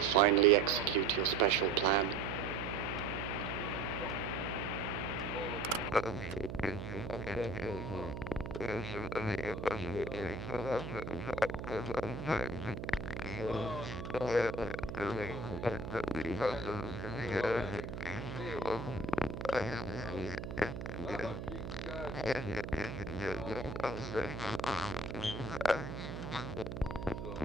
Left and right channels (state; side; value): noise; right; hum, 6 dB below the sound